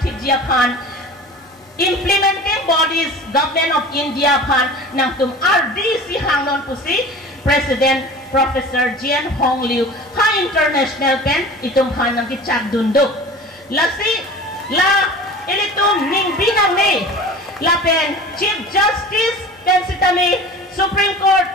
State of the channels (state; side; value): normal; both; correlation 0.38